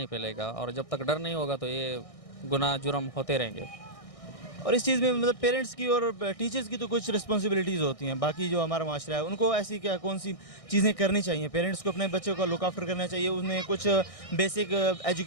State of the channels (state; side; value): late; right; 1.6 ms